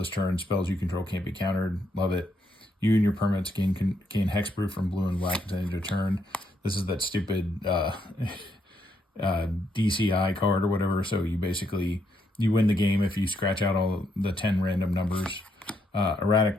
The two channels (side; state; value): both; normal; correlation 0.77